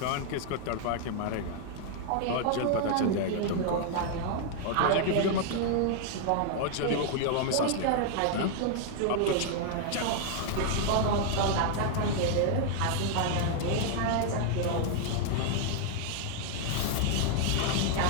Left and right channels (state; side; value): different; both; correlation 0.00